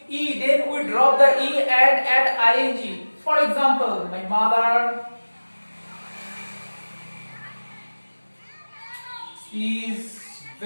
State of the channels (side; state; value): both; inverted; correlation -1.00